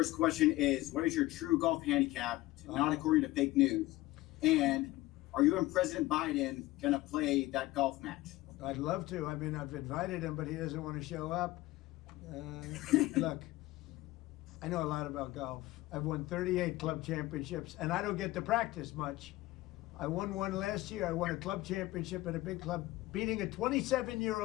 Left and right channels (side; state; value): right; quieter; 18.2 dB